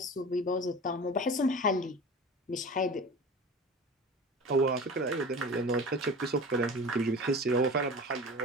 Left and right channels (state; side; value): normal; both; correlation 0.36